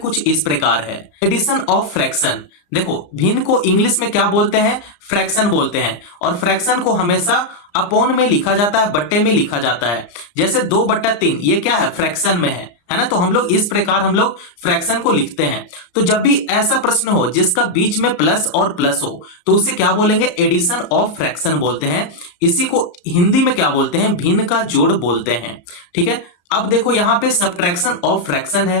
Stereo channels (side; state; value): right; late; 34 ms